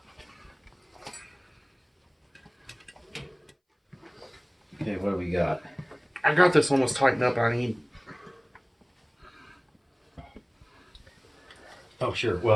Okay, what do we got? I got this almost tightened up. I need... Oh, sure.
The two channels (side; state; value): both; identical; correlation 1.00